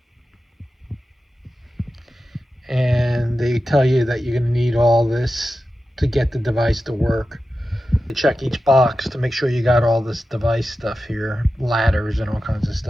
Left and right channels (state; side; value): normal; both; correlation 0.92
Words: And they tell you that you're going to need all this to get the device to work. You check each box to make sure you got all this device stuff here, ladders and all kinds of